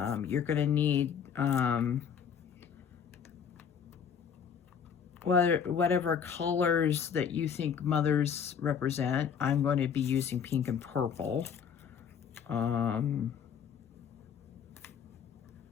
You're going to need whatever colors that you think mothers represent. I'm going to be using pink and purple.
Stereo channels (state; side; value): quieter; right; 7.4 dB